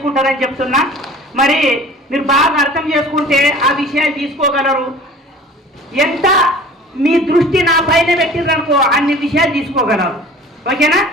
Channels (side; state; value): both; normal; correlation 0.44